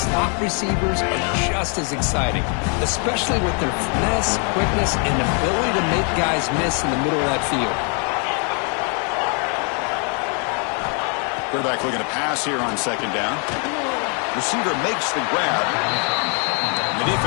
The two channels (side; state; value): right; quieter; 38.7 dB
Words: receivers are just as exciting, especially with their finesse, quickness, and ability to make guys miss in the middle of that field. Quarterback looking to pass here on 2nd down. Receiver makes the grab. The